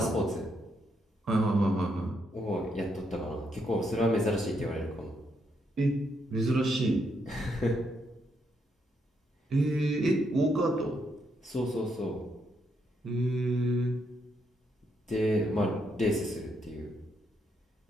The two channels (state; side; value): normal; both; correlation 0.77